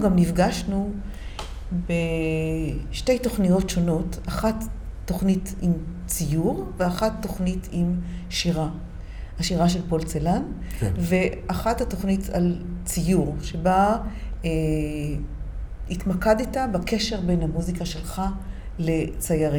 נפגשנו בשתי תוכניות שונות, אחת תוכנית עם ציור ואחת תוכנית עם שירה. השירה של פולצלן, כן. ואחת התוכנית על ציור, שבה התמקדת בקשר בין המוזיקה שלך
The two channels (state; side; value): identical; both; correlation 1.00